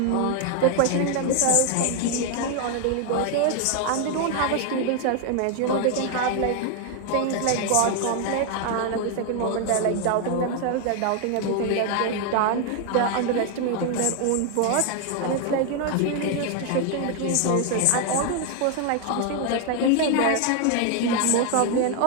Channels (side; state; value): both; different; correlation 0.00